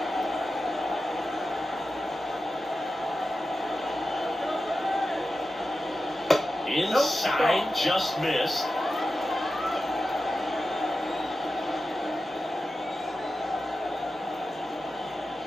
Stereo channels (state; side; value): normal; both; correlation 0.92